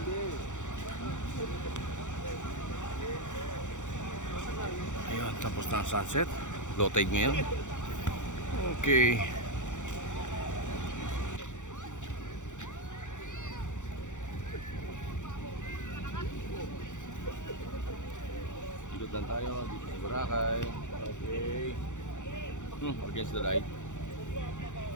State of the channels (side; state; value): right; late; 0.85 ms